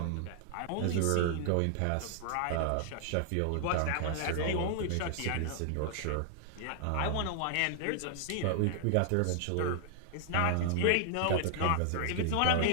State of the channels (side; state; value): both; different; correlation 0.00